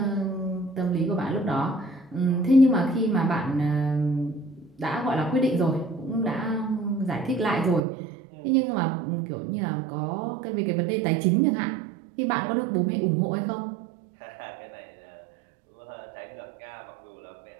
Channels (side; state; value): left; drops out; at 7.8 s